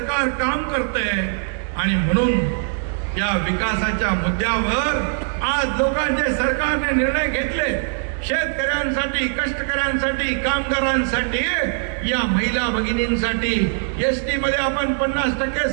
काम करतंय. आणि म्हणून या विकासाच्या मुद्द्यावर आज लोकांचे सरकारने निर्णय घेतले. शेतकऱ्यांसाठी, कष्टकऱ्यांसाठी, कामगारांसाठी, या महिला भगिनींसाठी एसटी मध्ये आपण 50%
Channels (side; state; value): left; silent; 55 dB below the other